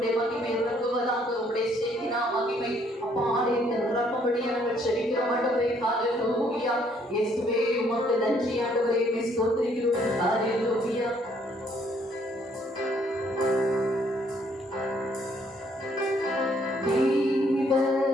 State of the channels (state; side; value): normal; both; correlation 0.66